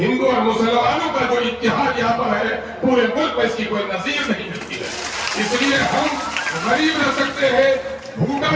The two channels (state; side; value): identical; both; correlation 1.00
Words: اور مسلمانوں کا جو اتحاد یہاں پر ہے پورے ملک میں اس کی کوئی نظیر نہیں ملتی ہے۔ اس لیے ہم غریب رہ سکتے ہیں، بھوکا